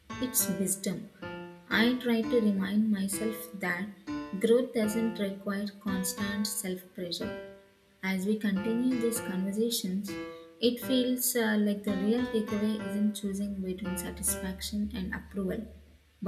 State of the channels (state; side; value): identical; both; correlation 1.00